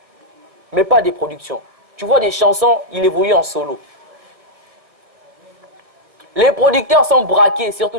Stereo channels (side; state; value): left; late; 1.6 ms